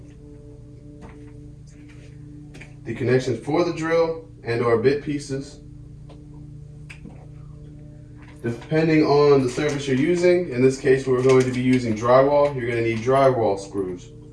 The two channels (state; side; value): identical; both; correlation 1.00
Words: the connections for the drill and or bit pieces. Depending on the surface you're using, in this case we're going to be using drywall, you're going to need drywall screws